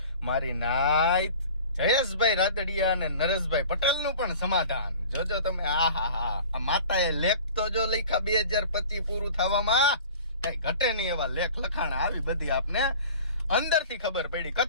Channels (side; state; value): both; inverted; correlation -0.42